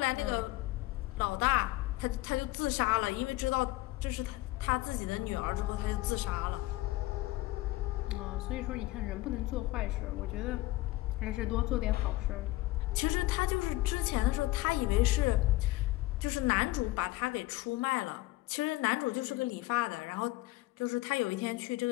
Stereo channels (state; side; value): quieter; right; 18.4 dB